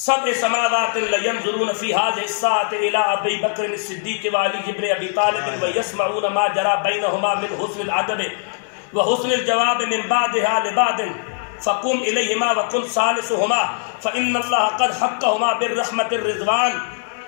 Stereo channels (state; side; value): silent; right; 60 dB below the other